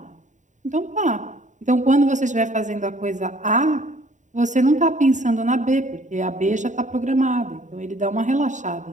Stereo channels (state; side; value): late; left; 0.36 ms